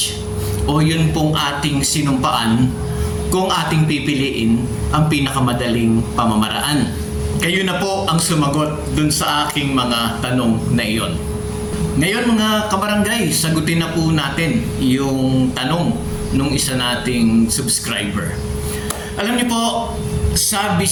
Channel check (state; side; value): identical; both; correlation 1.00